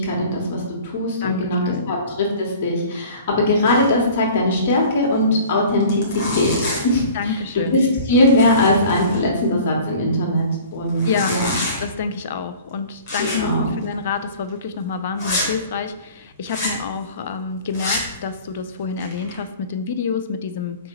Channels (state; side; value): inverted; both; correlation -0.45